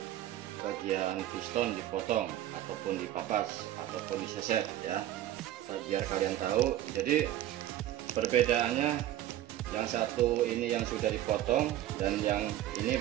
bagian piston dipotong ataupun dipapas ataupun diseset ya, biar kalian tahu. Jadi perbedaannya, yang satu ini yang sudah dipotong dan yang ini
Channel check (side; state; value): left; quieter; 13.1 dB